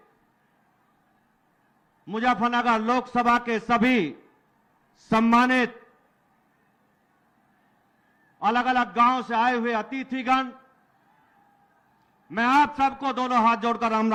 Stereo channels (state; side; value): identical; both; correlation 1.00